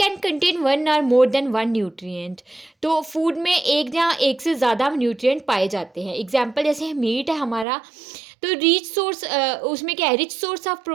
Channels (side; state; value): left; drops out; at 7.7 s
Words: कंटेन वन और मोर देन वन न्यूट्रिएंट। तो फूड में एक या एक से ज़्यादा न्यूट्रिएंट पाए जाते हैं। एग्जाम्पल जैसे मीट है हमारा, तो रिच सोर्स, उसमें क्या है, रिच सोर्स ऑफ